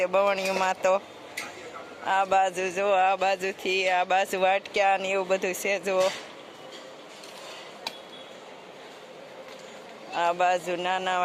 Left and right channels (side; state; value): both; identical; correlation 1.00